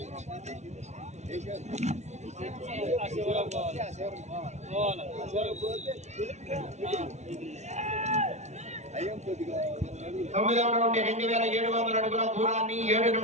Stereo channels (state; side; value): late; left; 0.32 ms